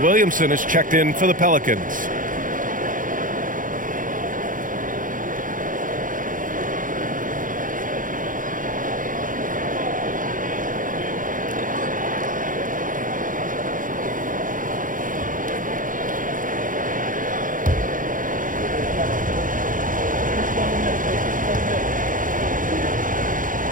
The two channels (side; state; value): left; late; 0.39 ms